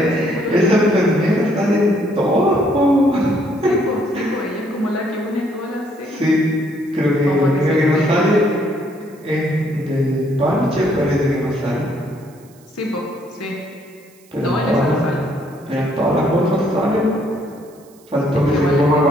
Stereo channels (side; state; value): right; noise; hiss, 29 dB below the sound